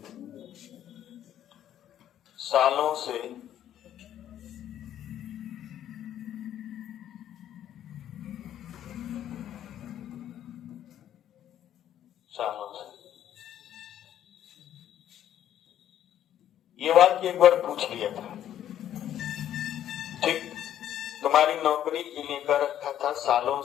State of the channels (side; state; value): right; quieter; 11.0 dB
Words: सालों से, सालों से। ये वाक्य एक बार पूछ लिया था, ठीक। तुम्हारी नौकरी के लिए कर रखा था सालों